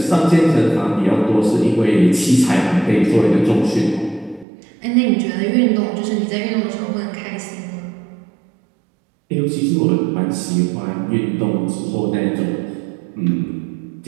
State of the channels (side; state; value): left; drops out; at 4.5 s